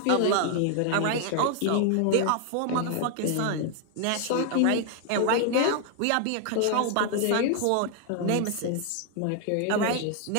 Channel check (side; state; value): both; different; correlation 0.00